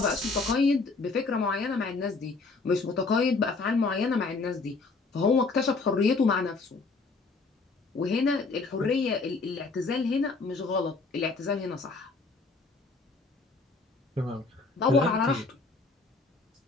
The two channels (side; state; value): right; quieter; 4.0 dB